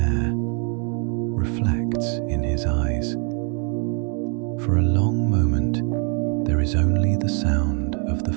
reflects in his eyes. For a long moment, there is only the sound of the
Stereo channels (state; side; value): quieter; left; 37.7 dB